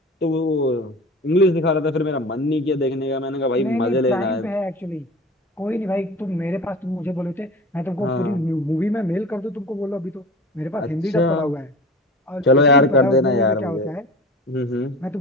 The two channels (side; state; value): both; normal; correlation 0.36